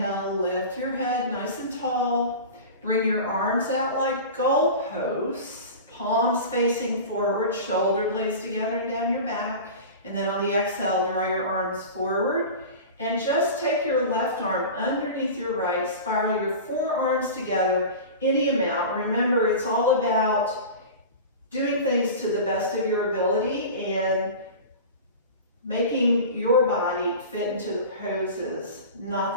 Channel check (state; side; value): inverted; both; correlation -0.32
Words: lift your head nice and tall. Bring your arms out like goalposts. palms facing forward, shoulder blades together and down your back. And then on the exhale, draw your arms forward. And just take your left arm underneath your right, spiral your forearms together any amount. Remember, it's all about doing things to the best of your ability and making your body fit into the poses,